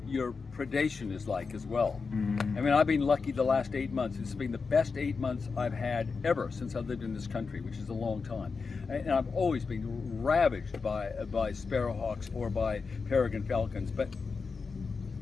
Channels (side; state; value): right; quieter; 4.8 dB